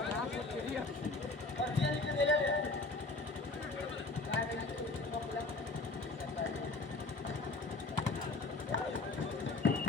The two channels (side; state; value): right; quieter; 3.4 dB